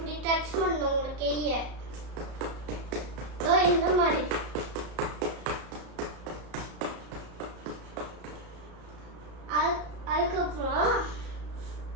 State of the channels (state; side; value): late; left; 33 ms